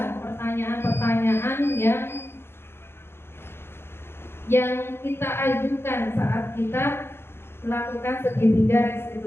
pertanyaan-pertanyaan yang kita ajukan saat kita melakukan segitiga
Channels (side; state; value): right; late; 0.11 ms